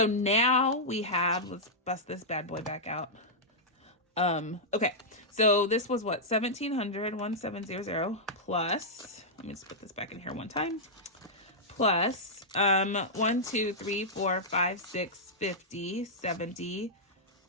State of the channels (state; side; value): normal; both; correlation -0.10